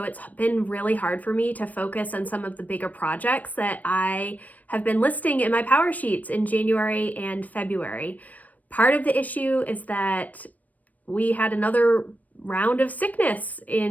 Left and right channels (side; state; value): right; late; 0.075 ms